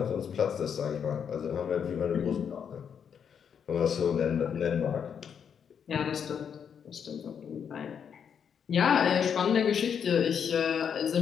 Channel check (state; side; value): quieter; right; 7.6 dB